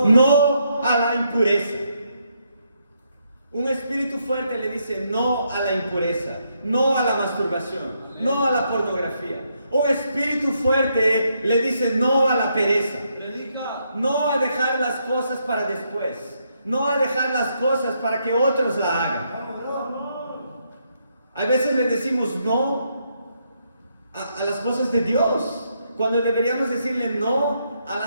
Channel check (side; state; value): both; inverted; correlation -0.77